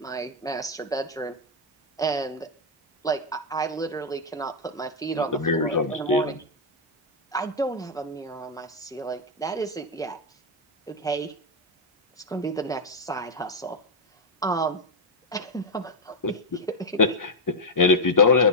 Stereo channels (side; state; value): both; normal; correlation 0.01